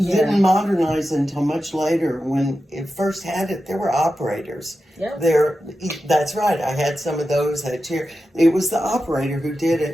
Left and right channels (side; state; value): both; normal; correlation 0.91